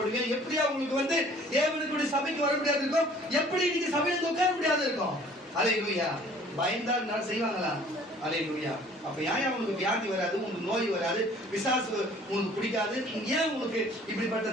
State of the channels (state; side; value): normal; both; correlation 0.53